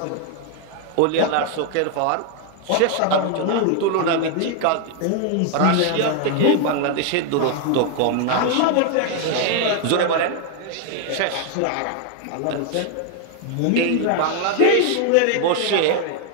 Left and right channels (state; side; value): different; both; correlation 0.00